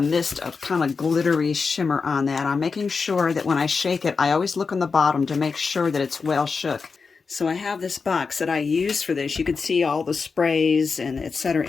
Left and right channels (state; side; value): quieter; right; 4.9 dB